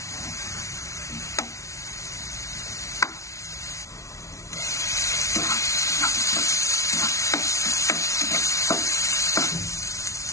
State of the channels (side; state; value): right; late; 0.14 ms